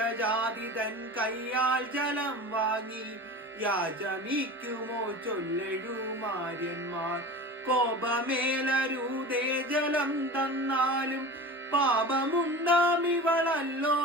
തൻ കയ്യാൽ ജലം വാങ്ങി യാചമിക്കുമോ ചൊല്ലെഴുമാര്യന്മാർ കോപമേലരൂതേ ജലം തന്നാലും പാപമുണ്ടാം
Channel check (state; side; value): normal; both; correlation 0.34